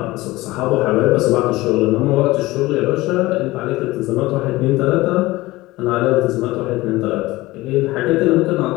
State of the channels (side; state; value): right; quieter; 19.4 dB